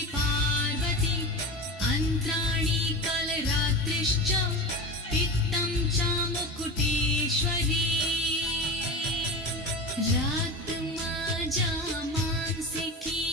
पार्वती अन्त्राणि कलरात्रिश्च पित्तं च मुकुटेश्वरी रक्तमज्जा मांसिकी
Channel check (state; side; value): normal; both; correlation 0.27